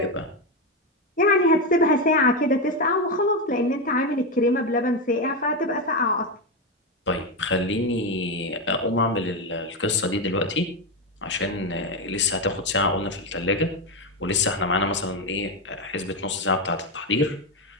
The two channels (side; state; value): both; normal; correlation 0.10